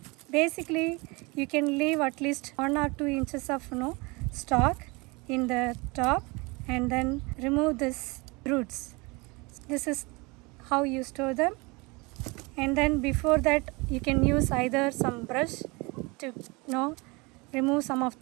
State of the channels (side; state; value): left; quieter; 26.5 dB